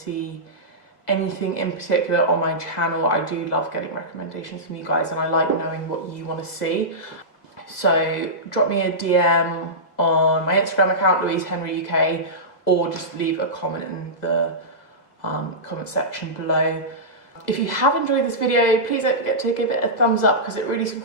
anything in particular on my channel. I do love getting recommendations from you guys, and I like knowing what you want to see. So drop me a DM on my Instagram account, louisehenryuk, or just leave a comment in the comment section below. If you have enjoyed this video, please don't forget to give it a thumbs up, because it really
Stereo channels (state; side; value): late; right; 2.0 ms